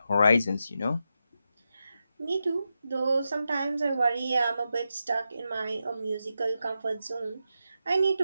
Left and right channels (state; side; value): inverted; both; correlation -0.88